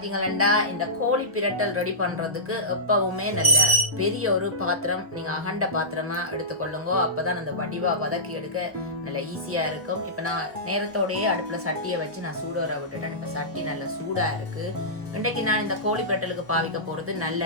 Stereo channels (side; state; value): left; late; 1.2 ms